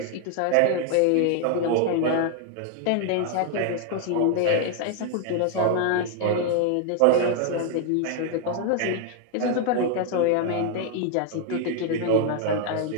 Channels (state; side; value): different; both; correlation 0.00